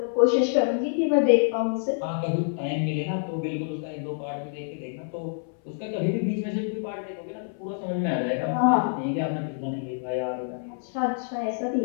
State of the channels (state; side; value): silent; right; 60 dB below the other